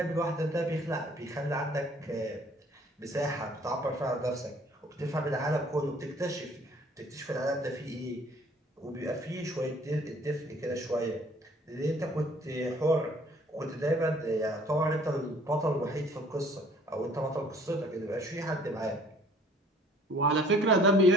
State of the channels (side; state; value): both; normal; correlation 0.56